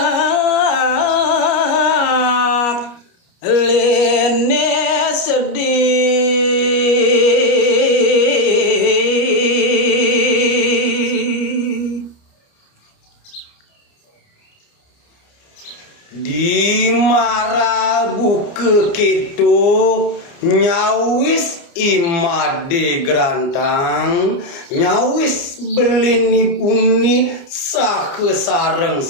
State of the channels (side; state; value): right; late; 29 ms